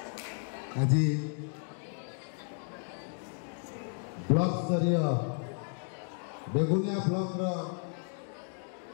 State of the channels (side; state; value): right; silent; 56 dB below the other